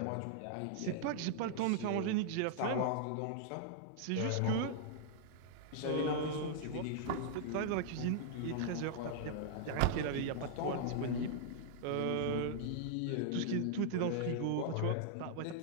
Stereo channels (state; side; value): different; both; correlation -0.01